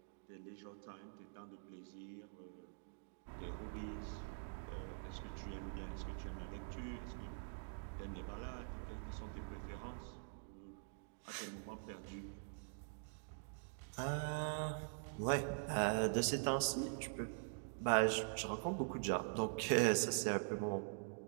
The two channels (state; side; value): silent; left; digital silence